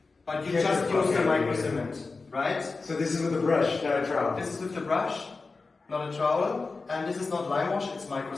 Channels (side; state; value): right; quieter; 4.0 dB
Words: but you Get just the fuck use the out of micro here. cement, right? So this is with a brush, not a trowel. This is with the brush, not a trowel, and this is not lime wash, it's micro